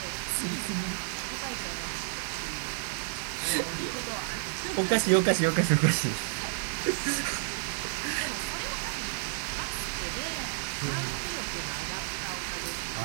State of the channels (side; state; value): left; silent; digital silence